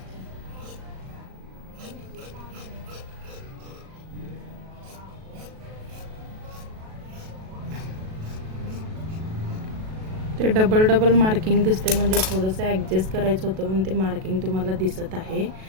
ते डबल मार्किंग दिसते, म्हणजे थोडंसं ॲडजस्ट करायचं होतं म्हणून ते मार्किंग तुम्हाला दिसत आहे.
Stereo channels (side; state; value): left; late; 37 ms